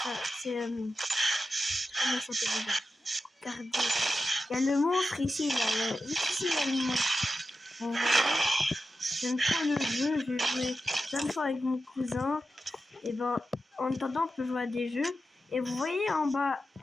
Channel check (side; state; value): both; normal; correlation 0.91